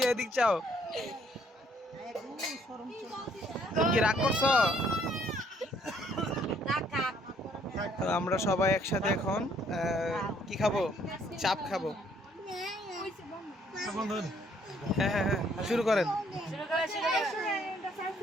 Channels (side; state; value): both; normal; correlation 0.65